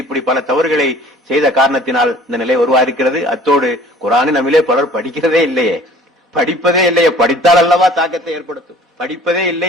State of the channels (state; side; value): normal; both; correlation 0.50